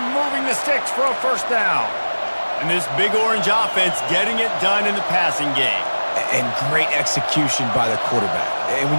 moving the sticks for a first down. And this big orange offense getting it done in the passing game. And great execution by the quarterback. And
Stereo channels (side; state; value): both; inverted; correlation -1.00